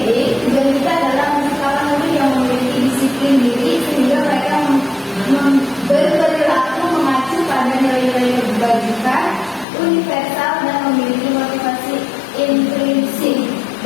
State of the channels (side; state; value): right; drops out; at 9.7 s